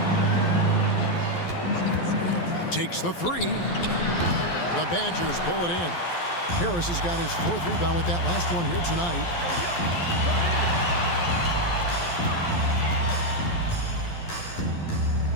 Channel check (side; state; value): right; late; 12 ms